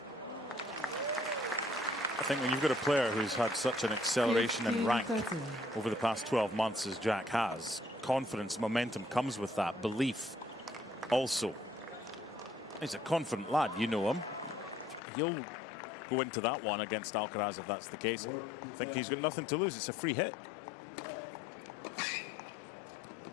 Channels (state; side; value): drops out; right; at 15.0 s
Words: I think when you've got a player who's had such an acceleration in rank over the past 12 months as Jack has, confidence, momentum comes with that. Belief also. He's a confident lad, you know him. He'll go into that one against Alcaraz if that's the case. I think he's got nothing to lose. It's a free hit.